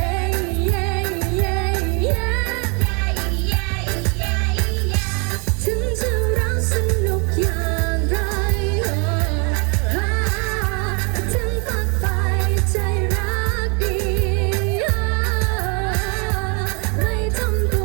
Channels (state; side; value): quieter; left; 34.1 dB